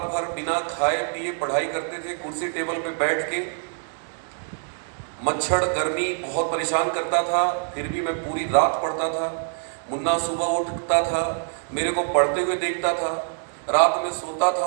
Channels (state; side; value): silent; left; 62 dB below the other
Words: भर बिना खाए पिए पढ़ाई करते थे, कुर्सी टेबल पे बैठ के। मच्छर गर्मी बहुत परेशान करता था, फिर भी मैं पूरी रात पढ़ता था। मुन्ना सुबह उठता था, मेरे को पढ़ते हुए देखता था, रात में सोता था,